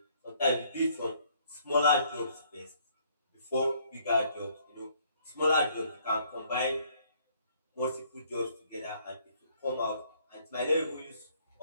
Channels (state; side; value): inverted; both; correlation -0.64